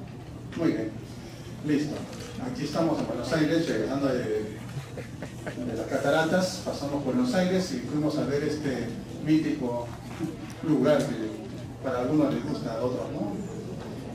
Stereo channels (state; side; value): identical; both; correlation 1.00